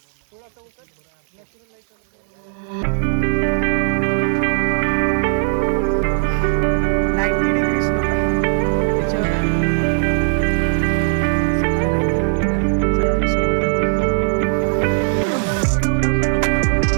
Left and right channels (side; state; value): left; silent; digital silence